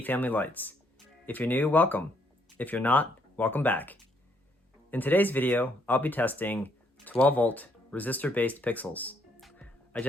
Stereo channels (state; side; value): normal; both; correlation 0.70